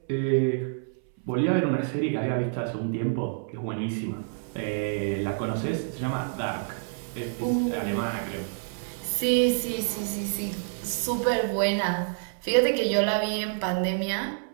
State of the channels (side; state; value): left; silent; 60 dB below the other